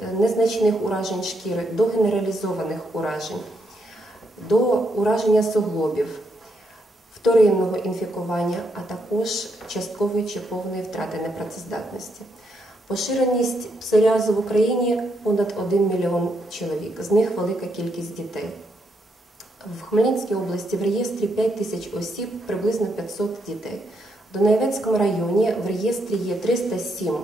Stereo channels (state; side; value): normal; both; correlation 0.78